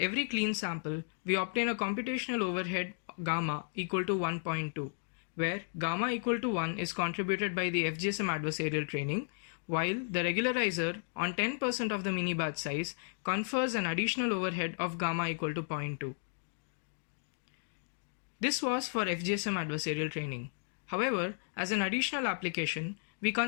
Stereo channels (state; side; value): silent; right; digital silence